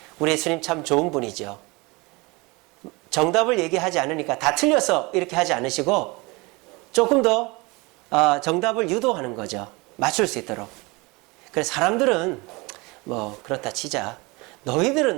우리 예수님 참 좋은 분이죠. 정답을 얘기하지 않으니까 다 틀렸어 이렇게 하지 않으시고 조금 더 정답을 유도하는 거죠. 맞출 수 있도록. 그래서 사람들은 뭐 그렇다 치자.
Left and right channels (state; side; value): quieter; left; 25.5 dB